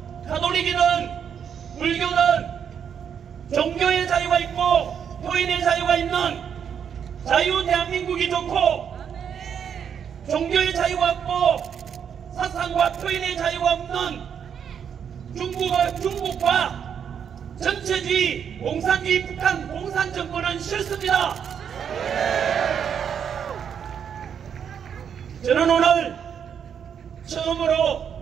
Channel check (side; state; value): left; quieter; 7.9 dB